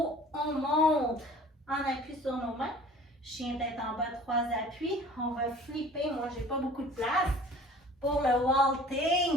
on monte en appui sur nos mains. Chien tête en bas, 3 appuis. On va flipper, moi j'ai pas beaucoup de place pour le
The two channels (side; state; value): both; normal; correlation 0.47